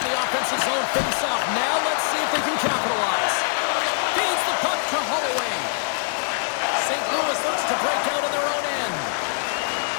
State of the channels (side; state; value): right; silent; 63 dB below the other